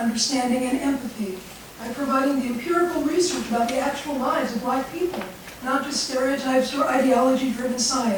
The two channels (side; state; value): both; identical; correlation 1.00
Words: and empathy by providing the empirical research about the actual lives of black people, not just stereotypes or ideology-driven